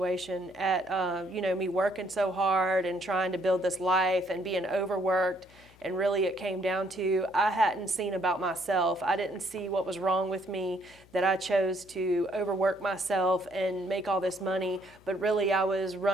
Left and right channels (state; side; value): noise; left; hum, 26 dB below the sound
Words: at me working so hard and trying to build this life and being overworked. And really it came down to I hadn't seen about myself. I didn't see what was wrong with me, that I chose to overwork myself and make all this money. But really I was